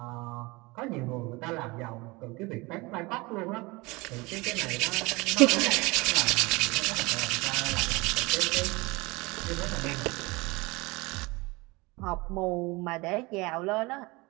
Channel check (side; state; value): left; quieter; 24.1 dB